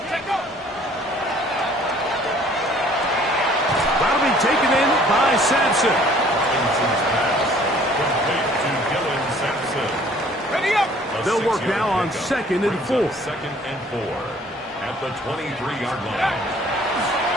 Taken in by Sampson. Ready up. They'll work now on 2nd and 4. 2nd and 4 at the 23-yard line.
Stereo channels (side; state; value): both; normal; correlation 0.55